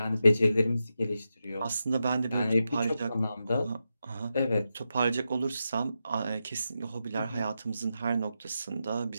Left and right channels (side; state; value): both; inverted; correlation -0.88